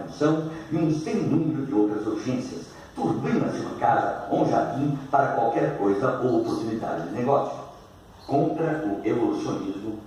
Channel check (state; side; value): identical; both; correlation 1.00